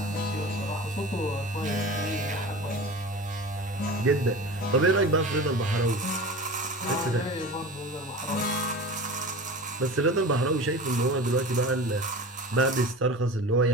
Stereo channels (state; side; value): normal; both; correlation 0.34